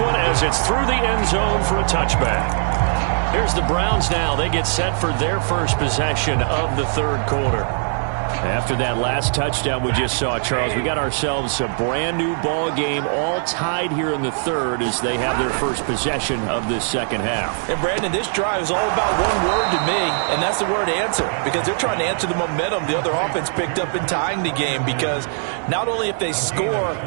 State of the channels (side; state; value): left; silent; digital silence